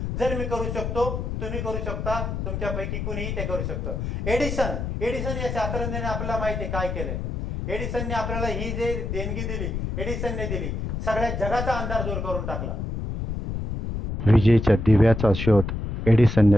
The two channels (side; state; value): left; noise; rumble, 3 dB below the sound